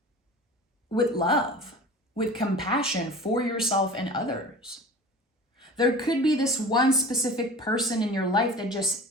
with love, with compassion for yourself and others. There could be this one specific person in your life that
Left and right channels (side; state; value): both; normal; correlation 0.38